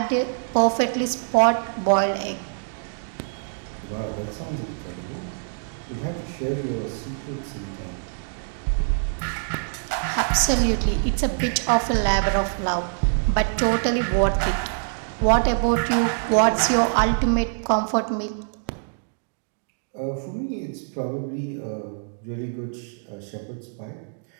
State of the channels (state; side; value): silent; left; digital silence